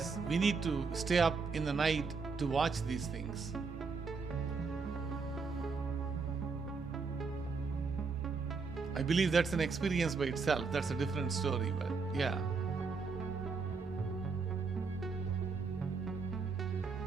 we need to stay up in the night to watch these things. I believe that's an experience by itself. That's a different story, but yeah.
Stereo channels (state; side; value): quieter; left; 4.7 dB